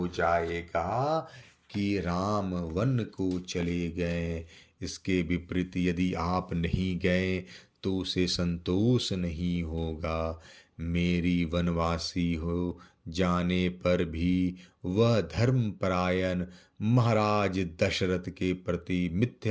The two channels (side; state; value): both; identical; correlation 1.00